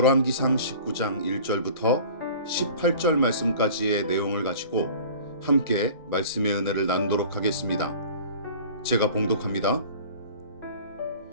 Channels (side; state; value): both; inverted; correlation -0.43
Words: 19장 1절부터 18절 말씀까지의 내용을 가지고 함께 말씀의 은혜를 나누도록 하겠습니다. 제가 봉독합니다.